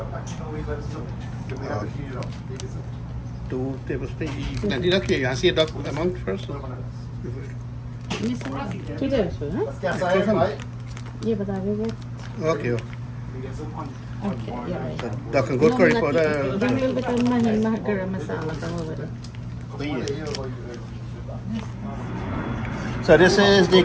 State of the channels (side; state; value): both; identical; correlation 1.00